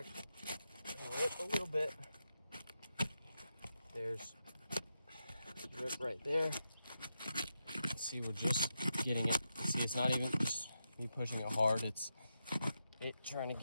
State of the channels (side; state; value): both; inverted; correlation -0.86